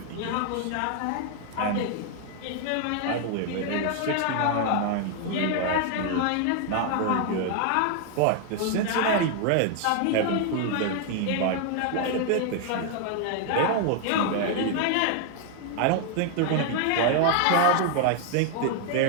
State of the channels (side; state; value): both; different; correlation 0.00